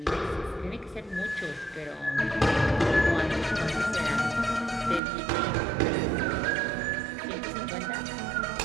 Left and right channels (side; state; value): left; drops out; at 5.0 s